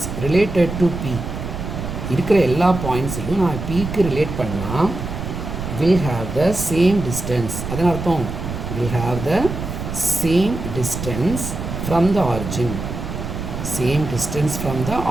related to P, இருக்கிற எல்லா பாயிண்ட்ஸையும் நான் Pக்கு ரிலேட் பண்ணால் will have the same distance. அதன் அர்த்தம் will have the same distance from the origin, same distance from the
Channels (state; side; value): noise; right; rumble, 6 dB below the sound